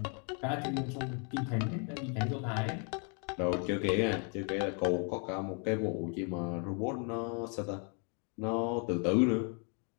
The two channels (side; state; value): right; quieter; 38.4 dB